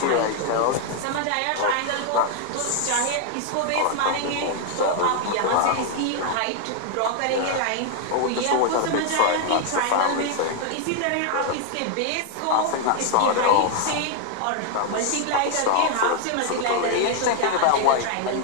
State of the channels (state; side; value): different; both; correlation 0.00